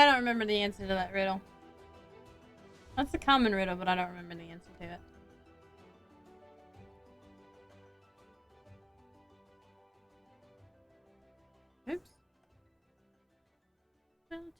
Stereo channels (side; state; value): both; identical; correlation 1.00